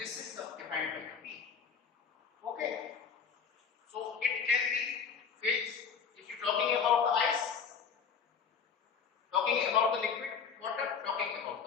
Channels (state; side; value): quieter; right; 6.5 dB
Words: is defined by the P. Okay. So it can be phase. If you're talking about the ice, talking about the liquid water, talking about